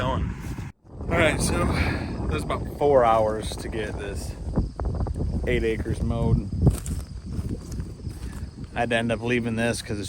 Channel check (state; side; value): identical; both; correlation 1.00